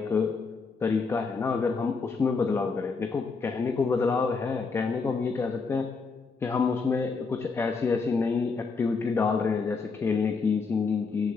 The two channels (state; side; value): quieter; right; 4.7 dB